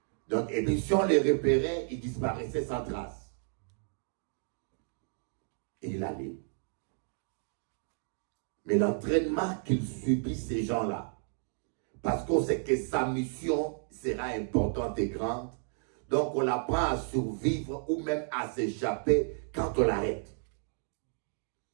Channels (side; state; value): left; silent; 56 dB below the other